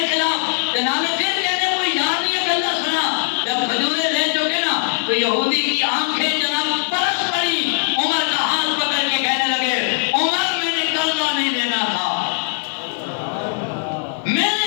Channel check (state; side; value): silent; right; 66 dB below the other